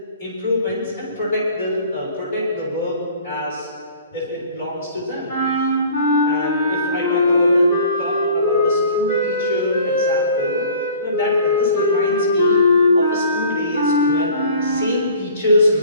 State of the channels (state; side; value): inverted; both; correlation -0.49